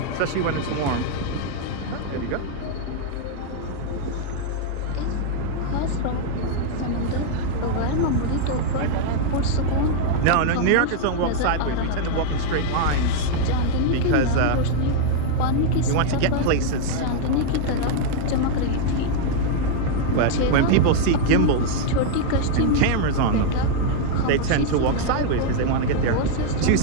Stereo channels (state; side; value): different; both; correlation 0.00